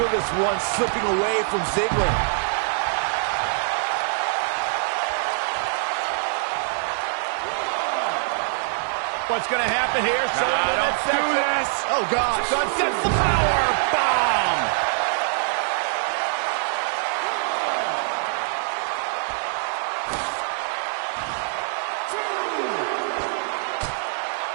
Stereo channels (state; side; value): silent; left; digital silence